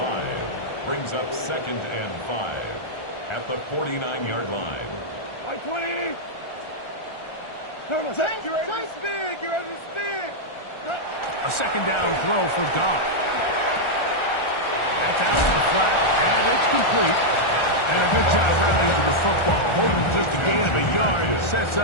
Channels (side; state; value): right; late; 1.4 ms